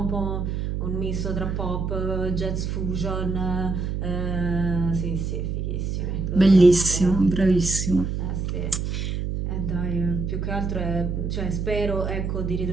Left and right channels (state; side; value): noise; right; hum, 2 dB below the sound